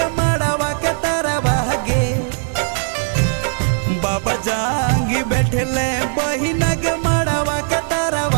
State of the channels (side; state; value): left; silent; digital silence